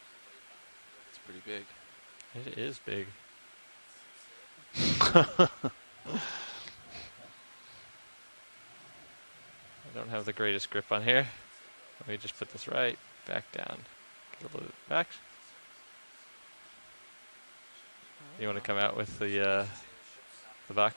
It's pretty big. It is big. I don't have the greatest grip on here. Let me just put this right back down. Get a little bit back. You want to come out with the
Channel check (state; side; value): inverted; both; correlation -1.00